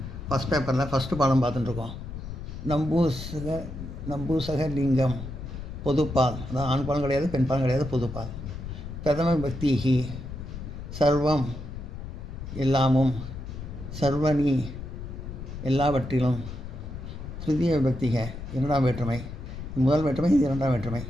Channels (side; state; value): left; noise; rumble, 9 dB below the sound